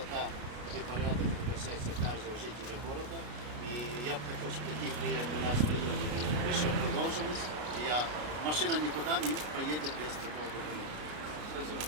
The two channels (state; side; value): late; left; 33 ms